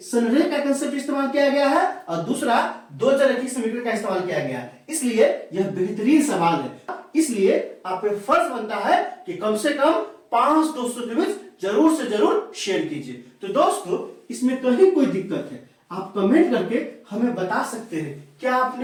संरेख का कंसेप्ट इस्तेमाल किया गया है और दूसरा 2 चरकी समीकरण का इस्तेमाल किया गया है। इसलिए यह बेहतरीन सवाल है, इसलिए आप पे फर्ज बनता है कि कम से कम 5 दोस्तों के बीच जरूर से जरूर शेयर कीजिए। तो दोस्तों इसमें कहीं कोई दिक्कत है आप कमेंट करके हमें बता सकते हैं। क्या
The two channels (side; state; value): both; identical; correlation 1.00